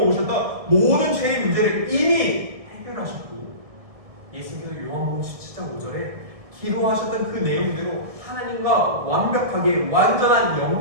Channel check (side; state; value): left; late; 1.6 ms